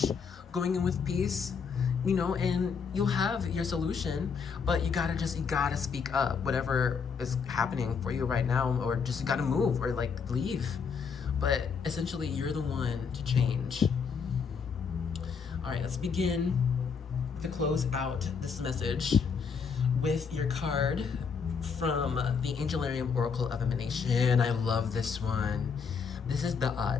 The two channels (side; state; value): right; quieter; 5.9 dB